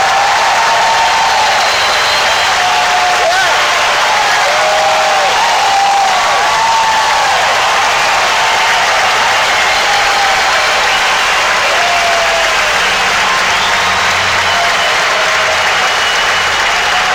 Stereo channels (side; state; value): both; identical; correlation 1.00